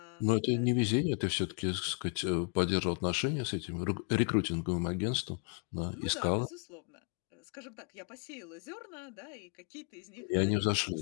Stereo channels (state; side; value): quieter; right; 37.0 dB